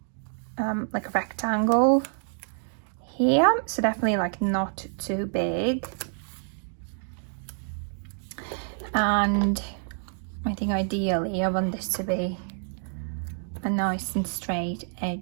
like a rectangle here. So definitely like not too big. And I think ideally I want this to be a nice and straight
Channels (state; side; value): silent; left; 60 dB below the other